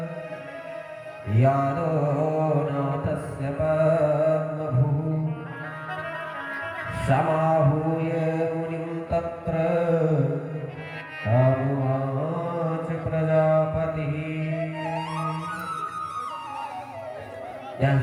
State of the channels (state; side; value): identical; both; correlation 1.00